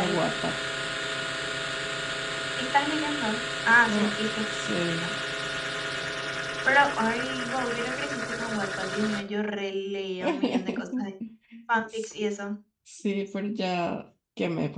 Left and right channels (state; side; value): identical; both; correlation 1.00